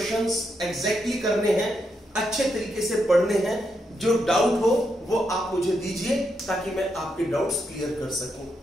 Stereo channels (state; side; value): normal; both; correlation 0.81